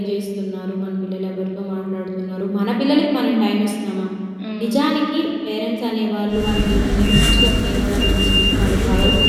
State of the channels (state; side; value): identical; both; correlation 1.00